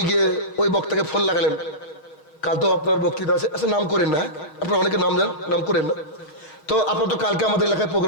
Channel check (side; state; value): right; late; 6.6 ms